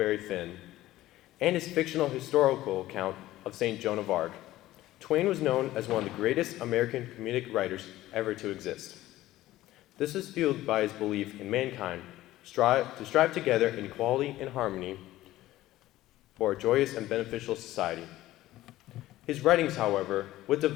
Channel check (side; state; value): right; quieter; 15.6 dB